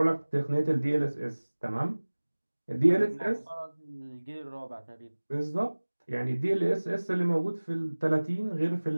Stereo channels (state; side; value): inverted; both; correlation -1.00